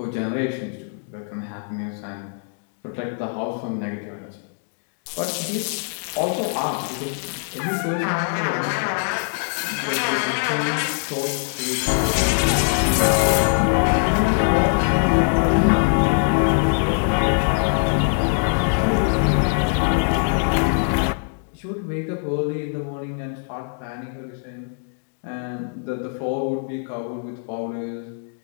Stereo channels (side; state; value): right; silent; digital silence